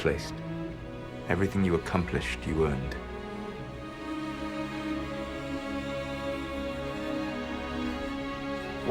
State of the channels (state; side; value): identical; both; correlation 1.00